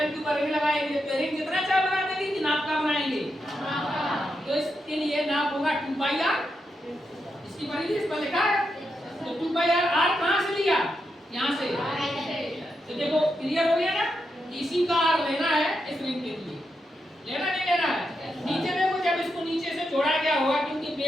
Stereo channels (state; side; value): normal; both; correlation 0.85